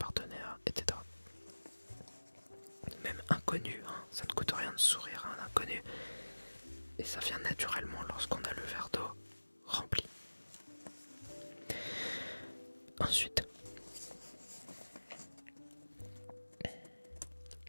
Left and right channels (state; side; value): inverted; both; correlation -1.00